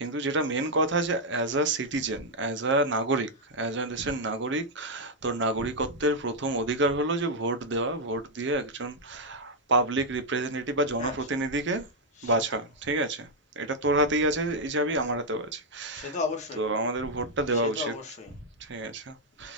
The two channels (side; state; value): both; normal; correlation -0.02